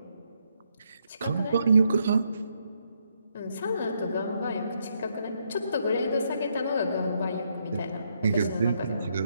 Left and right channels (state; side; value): inverted; both; correlation -0.76